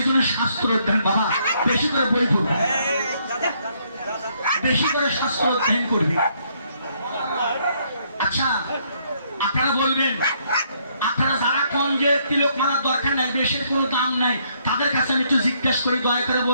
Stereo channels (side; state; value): both; inverted; correlation -0.70